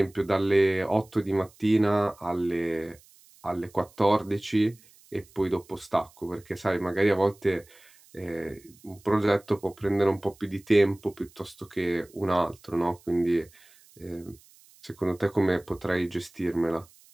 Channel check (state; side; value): noise; right; hiss, 27 dB below the sound